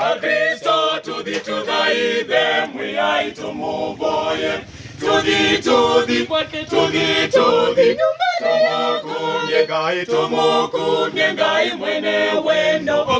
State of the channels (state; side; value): identical; both; correlation 1.00